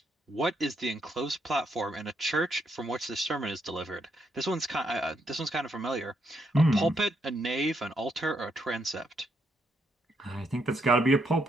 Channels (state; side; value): normal; both; correlation 0.76